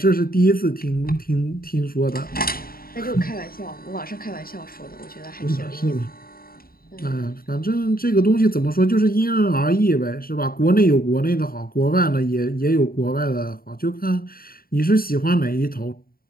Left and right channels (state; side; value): late; right; 0.43 ms